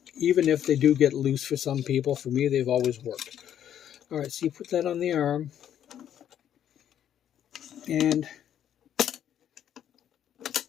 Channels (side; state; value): right; quieter; 10.1 dB